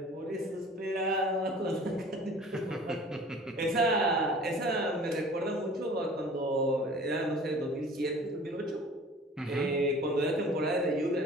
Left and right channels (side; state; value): both; normal; correlation 0.46